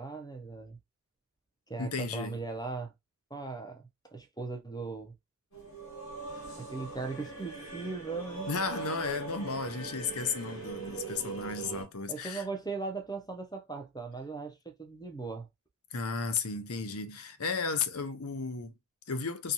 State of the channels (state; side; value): normal; both; correlation 0.16